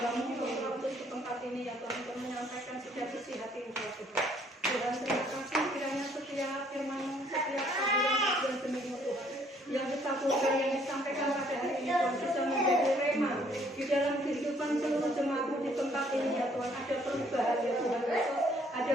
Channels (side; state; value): both; normal; correlation 0.64